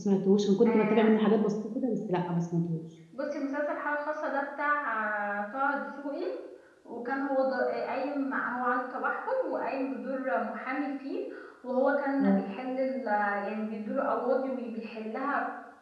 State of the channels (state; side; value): identical; both; correlation 1.00